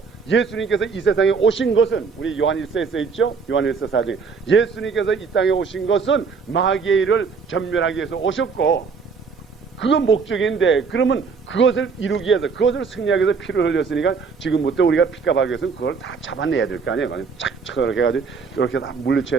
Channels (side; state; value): left; quieter; 5.3 dB